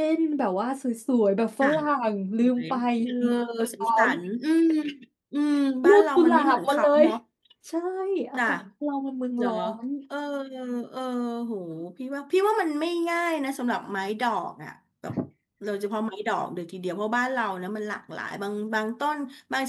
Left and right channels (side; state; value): both; identical; correlation 1.00